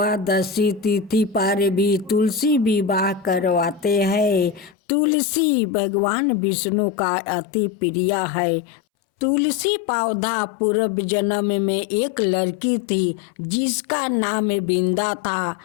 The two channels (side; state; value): right; drops out; at 4.8 s